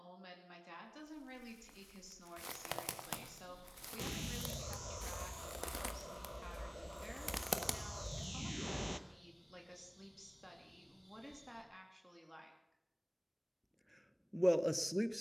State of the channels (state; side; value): identical; both; correlation 1.00